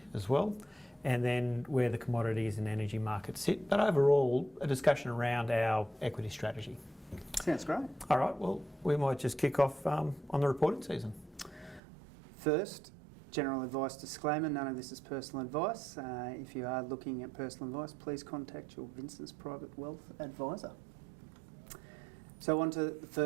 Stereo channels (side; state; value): left; drops out; at 11.8 s